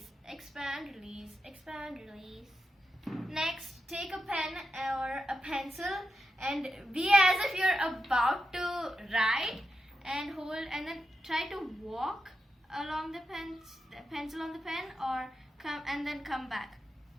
expand, release, expand, release. Next, take a pen or a pencil and be as if you're about to write, and hold, and then try to walk along the pencil on the pen, or come back.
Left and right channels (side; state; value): both; normal; correlation 0.87